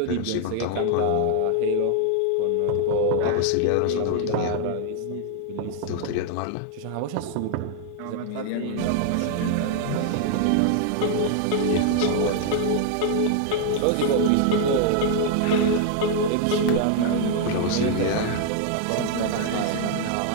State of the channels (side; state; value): both; different; correlation 0.00